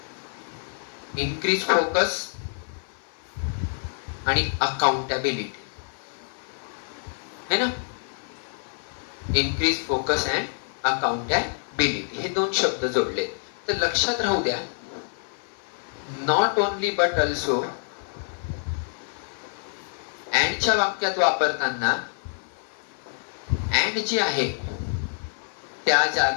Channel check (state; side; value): silent; right; 55 dB below the other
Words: इन्क्रीज फोकस आणि अकाउंटेबिलिटी है ना. इन्क्रीज फोकस अँड अकाउंटेबिलिटी हे दोन शब्द जोडले. तर लक्षात राहू द्या, नॉट ओनली बट ऑल्सो अँडच्या वाक्यात वापरताना अँड जे आहे त्या